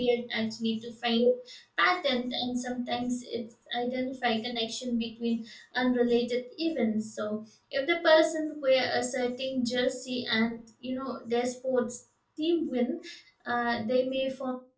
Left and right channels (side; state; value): both; identical; correlation 1.00